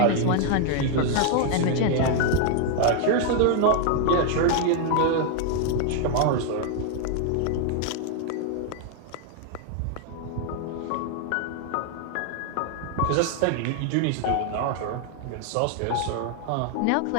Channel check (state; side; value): different; both; correlation 0.00